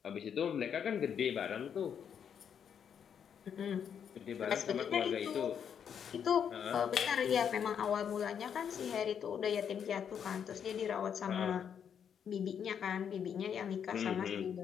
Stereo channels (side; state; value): right; quieter; 7.9 dB